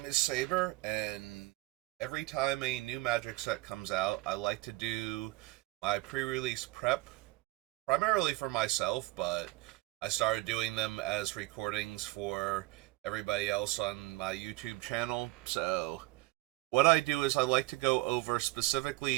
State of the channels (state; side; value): quieter; left; 20.9 dB